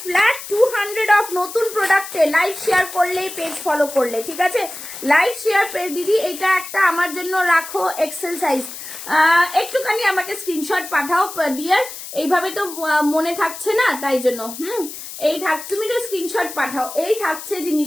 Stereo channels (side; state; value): left; noise; hiss, 11 dB below the sound